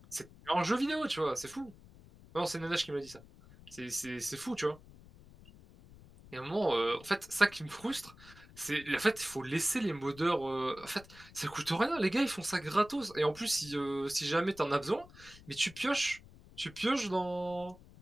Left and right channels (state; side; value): noise; left; rumble, 21 dB below the sound